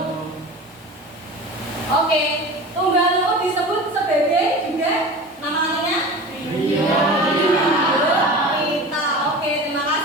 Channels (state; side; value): normal; both; correlation 0.34